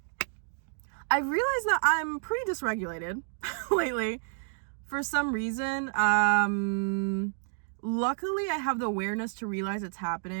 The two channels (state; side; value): silent; left; digital silence